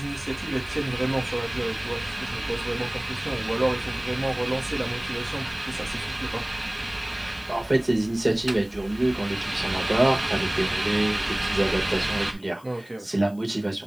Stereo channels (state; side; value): noise; left; hiss, 26 dB below the sound